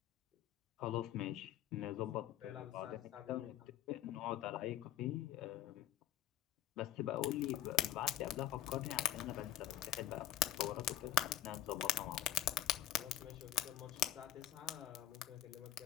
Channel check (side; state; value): right; quieter; 12.2 dB